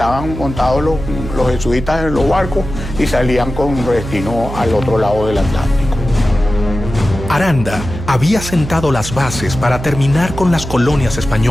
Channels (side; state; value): right; noise; hum, 9 dB below the sound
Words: montados los jesuitas en los barcos y salían con destino al otro lado del Atlántico. Aranda había sentado las bases para terminar con las colonias